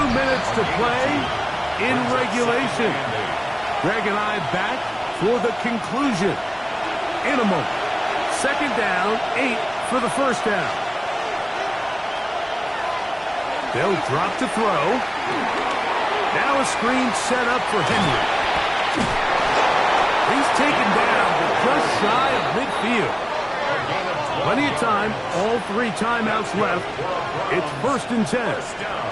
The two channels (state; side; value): identical; both; correlation 1.00